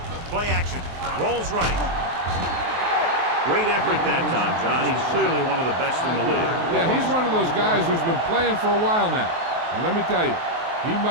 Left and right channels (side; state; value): left; late; 23 ms